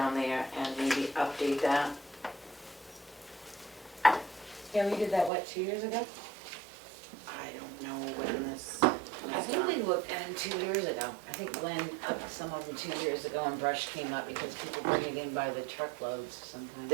there and maybe update that. Yeah, we did that, what, 2 years ago? I don't know when this I was think we done. looked at it 2 years ago. I think Glenn upped some of them 2 years ago and brush came up because people bring it in by the truckloads sometimes.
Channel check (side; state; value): left; drops out; at 5.3 s